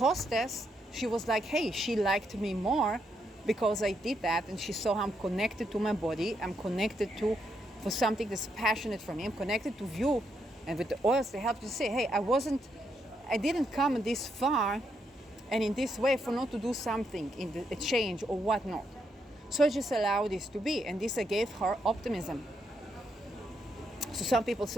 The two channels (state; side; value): normal; both; correlation 0.79